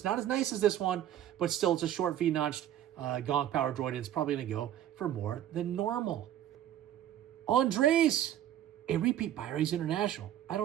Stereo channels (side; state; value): left; quieter; 11.5 dB